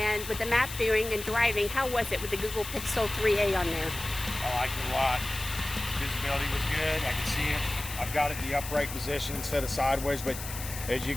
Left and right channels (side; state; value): left; noise; hiss, 10 dB below the sound